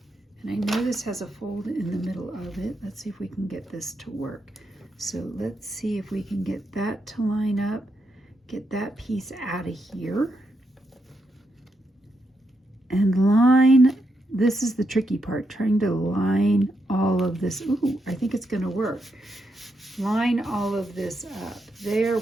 And I know this has a fold in the middle of it. Let's see if we can get this to work. So let's see if we can get that to line up, get that piece out of here. And line, this is the tricky part, trying to line all of this. Ooh, I think it's gonna work. Line all of this up. There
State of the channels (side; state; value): both; normal; correlation 0.82